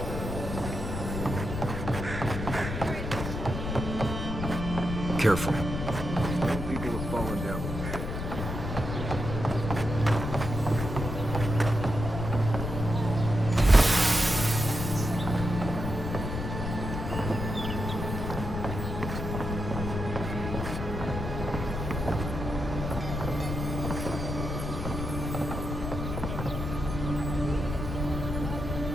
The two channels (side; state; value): left; noise; rumble, 4 dB below the sound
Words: Careful. People have fallen down.